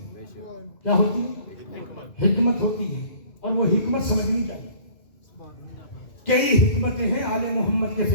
کیا ہوتی ہے؟ حکمت ہوتی ہے، اور وہ حکمت سمجھنی چاہیے۔ کئی حکمتیں ہیں آل محمد کے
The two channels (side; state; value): right; late; 2.5 ms